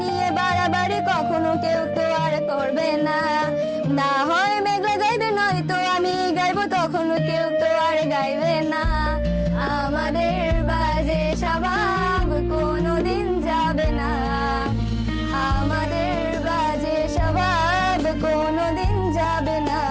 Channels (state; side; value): identical; both; correlation 1.00